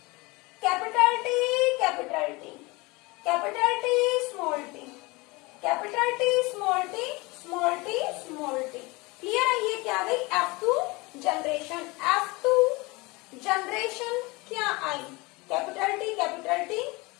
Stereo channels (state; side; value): quieter; right; 24.4 dB